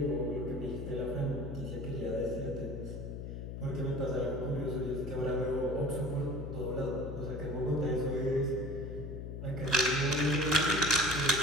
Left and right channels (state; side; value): noise; left; hum, 7 dB below the sound